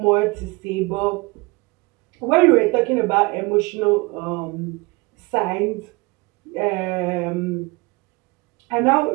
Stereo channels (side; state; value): left; quieter; 24.9 dB